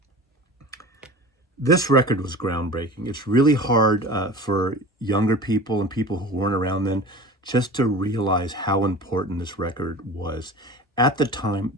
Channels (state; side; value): normal; both; correlation 0.36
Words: This record was groundbreaking. It's really hard for younger people and people who weren't around then just to realize how important this record was. At the time,